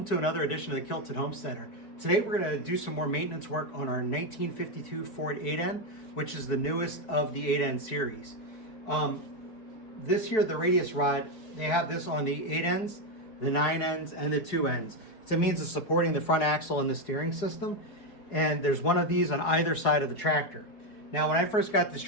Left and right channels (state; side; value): late; right; 4.6 ms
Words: to another edition of the Kilted Homesteader. Today we're going to do some more maintenance work on our 1952 Ford 8N, which is the newest of the 8N series. This here, the Radius Rod, they have this on the 8Ns, the 9Ns, and the 2Ns. It's a means of supporting the front axle and the steering system, and there's one of these on either side of the tractor. Now, when I first got this